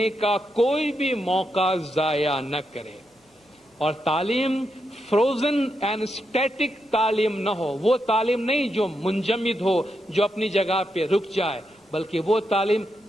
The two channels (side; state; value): both; normal; correlation 0.83